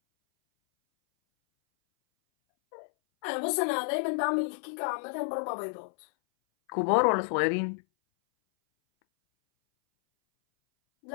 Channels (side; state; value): right; silent; 58 dB below the other